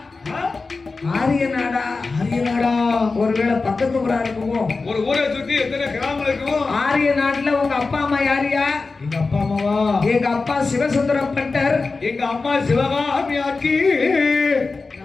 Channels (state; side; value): quieter; right; 4.0 dB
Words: ஆரிய நாடா? ஆரிய நாடா? ஒருவேளை பக்கத்து ஊரா இருக்குமோ? ஒரு ஊரை சுத்தி எத்தனை கிராமம் இருக்கும்? ஆரிய நாட்டுல உங்க அப்பா அம்மா யாரியா? எங்க அப்பா அம்மாவா? எங்க அப்பா சிவசுந்தரம் பட்டர். எங்க அம்மா சிவகாமி ஆக்கி.